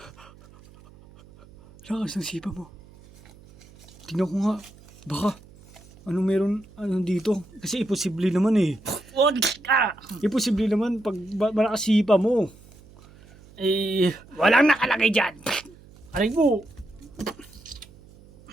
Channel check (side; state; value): right; noise; hum, 23 dB below the sound